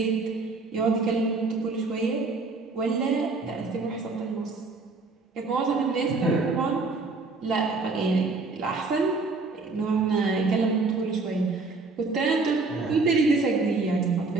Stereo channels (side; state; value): left; quieter; 3.8 dB